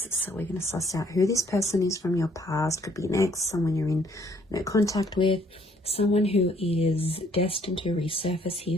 So we're going to suss out who this person is from your past. Could be an ex, someone you're in contact with, someone who is destined to resurface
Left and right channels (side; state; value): both; normal; correlation 0.63